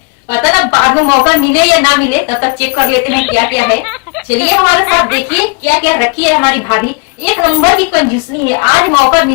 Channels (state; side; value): quieter; right; 32.3 dB